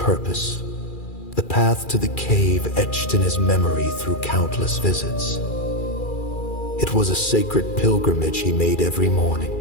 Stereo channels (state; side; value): late; right; 2.4 ms